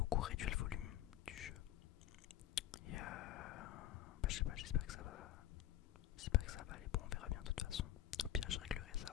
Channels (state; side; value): quieter; right; 12.0 dB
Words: réduit le volume du jeu. Et bah, je sais pas, j'espère que ça va aller. Bon on verra bien de toute façon. Au pire je réglerai